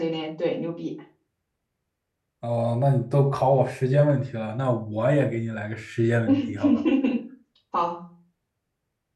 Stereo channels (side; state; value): both; identical; correlation 1.00